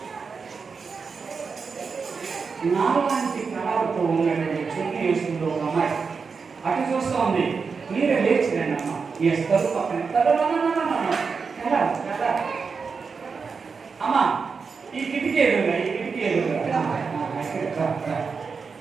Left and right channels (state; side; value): quieter; left; 5.2 dB